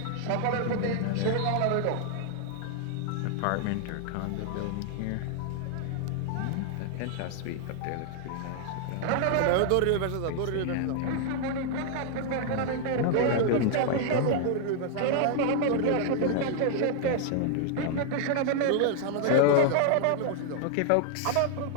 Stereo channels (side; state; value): both; different; correlation 0.00